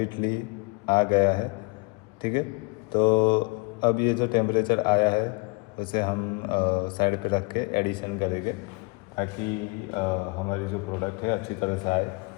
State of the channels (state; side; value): quieter; right; 29.8 dB